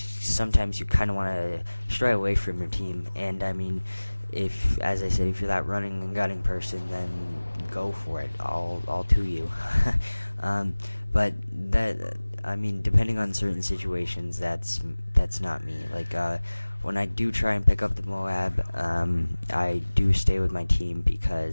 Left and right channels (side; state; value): both; inverted; correlation -1.00